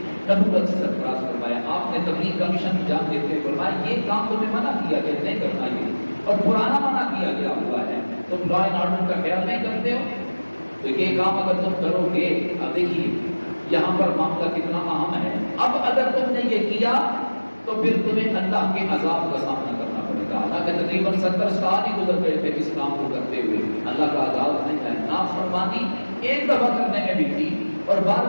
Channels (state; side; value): inverted; both; correlation -1.00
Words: نبوت سے سرفراز فرمایا۔ آپ نے تبلیغ کا مشن انجام دیتے ہوئے فرمایا یہ کام تمہیں منع کیا کہ نہیں کرنا، یہ اور پرانا منع کیا گیا ہوا ہے، تم لا اینڈ آرڈر کا خیال نہیں کرتے ہو، تو یہ کام اگر تم کرو گے، اب دیکھیے یہاں پر معاملہ کتنا اہم ہے، اب اگر تم نے یہ کیا تو پھر تمہیں اللہ کے عذاب کا سامنا کرنا پڑے گا۔ اللہ کے تقریباً 70 سال ہی گزر گئے تھے اس کام کو کرتے ہوئے، اللہ کا عذاب نہیں ہے۔ نافرمانی ایک دفعہ کرنے میں بھی تھی اور بار